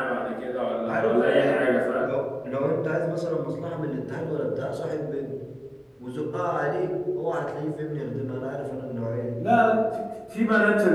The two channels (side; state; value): both; identical; correlation 1.00